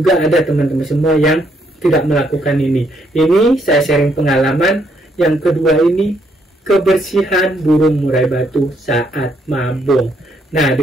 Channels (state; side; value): normal; both; correlation 0.73